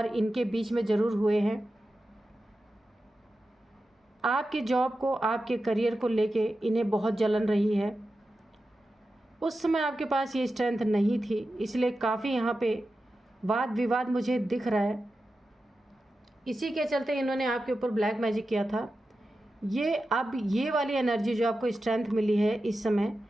इनके बीच में ज़रूर हुए हैं। आपके जॉब को, आपके करियर को लेके इन्हें बहुत जलन रही है। उस समय आपके पास ये स्ट्रेंथ नहीं थी, इसलिए काफ़ी यहाँ पे वाद विवाद मुझे दिख रहा है। इसी के चलते इन्होंने आपके ऊपर ब्लैक मैजिक किया था। ये अब ये वाली एनर्जी जो आपको स्ट्रेंथ मिली है इस समय,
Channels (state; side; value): normal; both; correlation 0.92